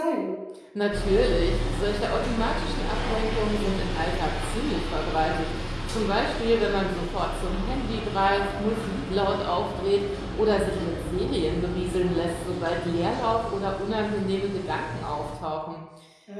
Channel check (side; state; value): both; identical; correlation 1.00